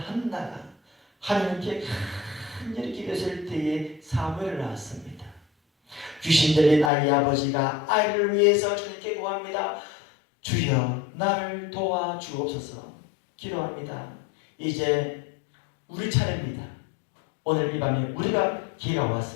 하나님께 간절히 기도했을 때에 사무엘을 낳았습니다. 귀신 들린 아이의 아버지가 아이를 위해서 주님께 구합니다. 주여 나를 도와주옵소서 기도합니다. 이제 우리 차례입니다. 오늘 이 밤에 우리가 기회가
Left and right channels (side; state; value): right; drops out; at 6.9 s